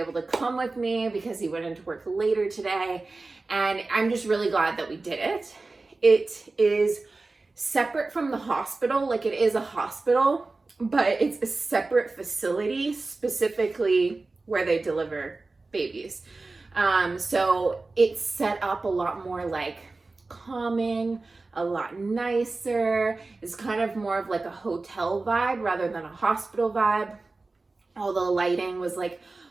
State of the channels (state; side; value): quieter; left; 3.5 dB